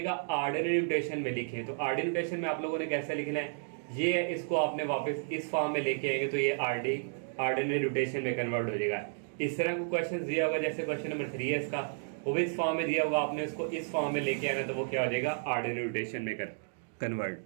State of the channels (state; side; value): silent; left; digital silence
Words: ऑर्डिनरी नोटेशन में लिखें। तो ऑर्डिनरी नोटेशन में आप लोगों ने कैसे लिखना है, ये इसको आपने वापस इस फॉर्म में लेके आएंगे तो ये ऑर्डिनरी नोटेशन में कन्वर्ट हो जाएगा। इस तरह को क्वेश्चन दिया होगा, जैसे क्वेश्चन नंबर 3 है इसका, वो भी इस फॉर्म में दिया होगा, आपने इसको इस फॉर्म में लेके आना तो वो क्या हो जाएगा ऑर्डिनरी नोटेशन में कन्वर्ट।